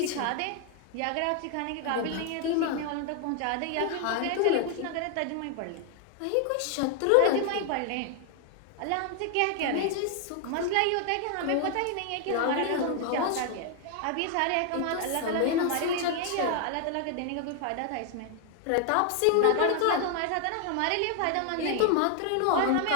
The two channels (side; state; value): both; different; correlation 0.00